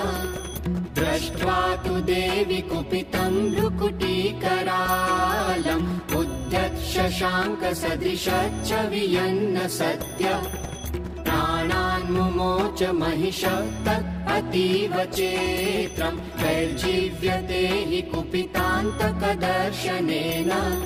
दृष्ट्वा तु देवी कुपितं भ्रुकुटीकरालम् उद्यत् शशाङ्कसदृशच्च वियन्न सत्य प्राणान् मुमोच महिषः तत् अतीव चेत्रम् वैर्जीव्यते हि कुपितान्तकदर्शनेन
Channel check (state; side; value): identical; both; correlation 1.00